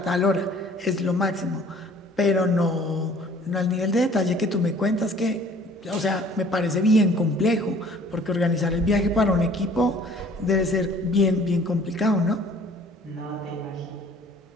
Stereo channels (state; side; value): normal; both; correlation 0.53